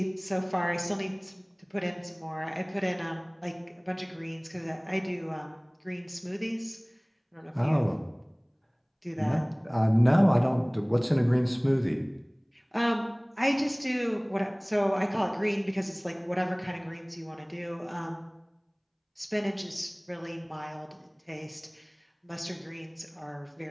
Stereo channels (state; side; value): identical; both; correlation 1.00